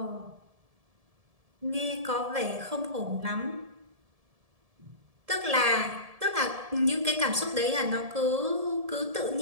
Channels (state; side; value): late; left; 1.7 ms